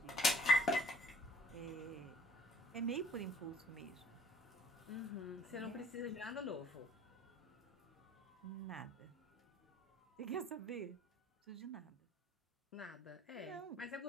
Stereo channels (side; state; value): both; normal; correlation 0.55